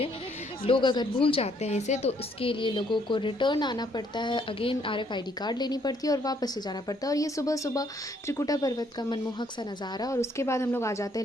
लोग अगर भूल जाते हैं इसे, तो इसके लिए लोगों को रिटर्न आना पड़ता है, अगेन RFID कार्ड लेनी पड़ती है और वापस से जाना पड़ता है। और ये सुबह सुबह त्रिकुटा पर्वत का मनमोहक सा नज़ारा। और उसके बाद हम लोग आ जाते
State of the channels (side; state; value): both; normal; correlation 0.68